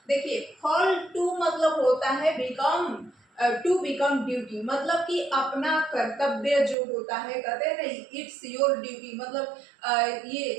देखिए, फॉल टू मतलब होता है बिकम, टू बिकम ड्यूटी, मतलब कि अपना कर्तव्य जो होता है, कहते हैं ना इट्स योर ड्यूटी, मतलब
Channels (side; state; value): left; drops out; at 6.8 s